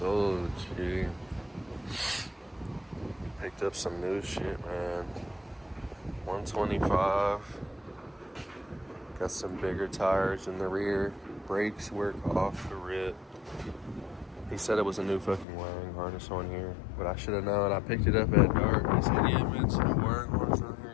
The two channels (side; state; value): right; drops out; at 15.5 s